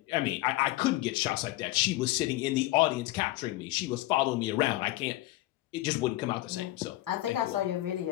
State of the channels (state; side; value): quieter; right; 17.4 dB